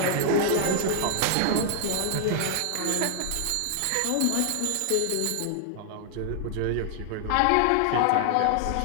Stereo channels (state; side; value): different; both; correlation 0.00